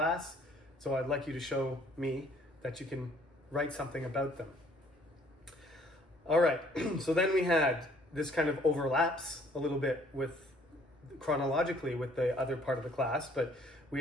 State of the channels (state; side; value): normal; both; correlation 0.60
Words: So I'd like you to show me that you can write something about them. All right, so then we had this kind of overlaps a little bit with chronologically with the other part of the class, but we